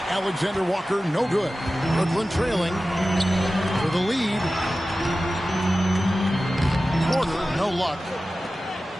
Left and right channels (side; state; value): both; normal; correlation 0.95